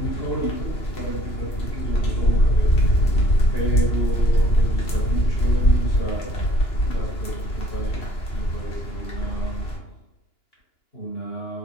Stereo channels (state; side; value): late; right; 3.0 ms